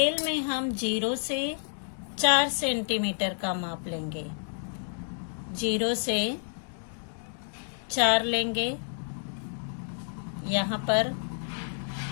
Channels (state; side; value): silent; right; digital silence